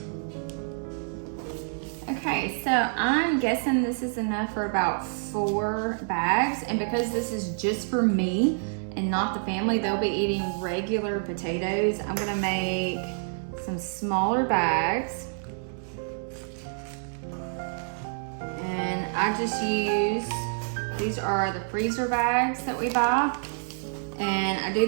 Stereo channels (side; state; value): left; silent; digital silence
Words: Okay, so I'm guessing this is enough for about 4 bags, and because this is just for me and not the family, they'll be eating regular potatoes. I'm gonna make some smaller bags. And I just use, these are the freezer bags that we buy. And I do